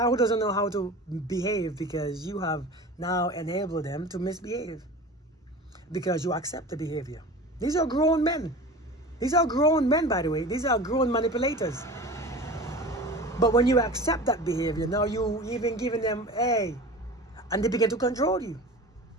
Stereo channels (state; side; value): normal; both; correlation 0.35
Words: who doesn't know how to behave because you have now enabled them to misbehave. Because you accept the behavior. These are grown men. These are grown men, by the way. These are grown manipulators. But when you accept that behavior, now you even giving them, hey, and they begin to control you.